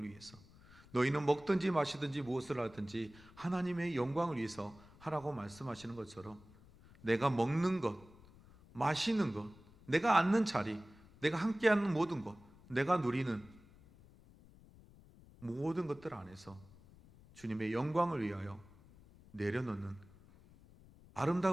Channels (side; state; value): left; noise; rumble, 23 dB below the sound